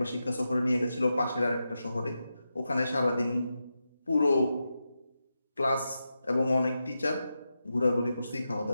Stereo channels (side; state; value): both; inverted; correlation -0.89